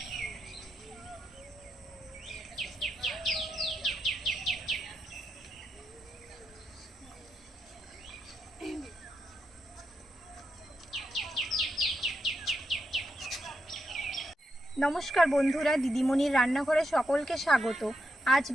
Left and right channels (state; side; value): normal; both; correlation 0.84